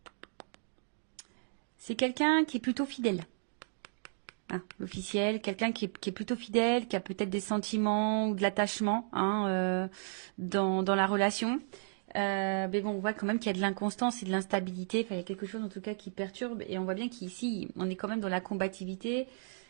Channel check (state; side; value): silent; left; digital silence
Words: C'est quelqu'un qui est plutôt fidèle. Hein, l'officiel, quelqu'un qui est plutôt fidèle, qui a peut-être des sentiments ou de l'attachement hein, dans la relation. Mais bon, on voit quand même qu'il y a de l'inconstance et de l'instabilité. Enfin, il y a quelque chose en tout cas qui perturbe. Et on voit bien qu'ici, on est quand même dans la combativité.